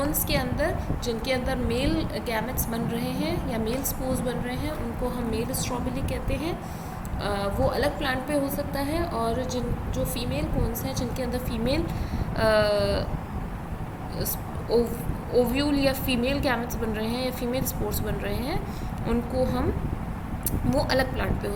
के अंदर जिनके अंदर मेल गैमेट्स बन रहे हैं या मेल स्पोर्स बन रहे हैं, उनको हम मेल स्ट्रॉबेली कहते हैं. वो अलग प्लांट पे हो सकता है, और जो फीमेल कोन्स हैं जिनके अंदर फीमेल ओव्यूल या फीमेल गैमेट्स बन रहे हैं या फीमेल स्पोर्स बन रहे हैं, उनको हम वो अलग प्लांट पे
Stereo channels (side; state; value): both; identical; correlation 1.00